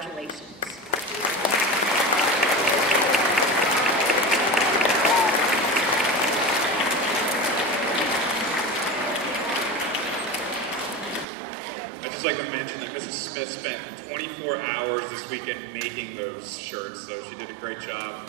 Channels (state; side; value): drops out; left; at 11.2 s